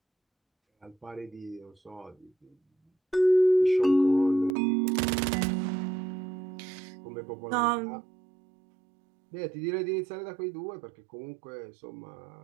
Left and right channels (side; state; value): left; drops out; at 4.5 s